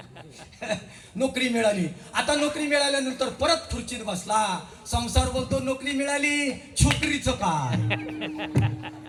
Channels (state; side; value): identical; both; correlation 1.00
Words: नोकरी मिळाली. आता नोकरी मिळाल्यानंतर परत खुर्चीत बसला. संसार बोलतो नोकरी मिळाली, छोकरीचं काय?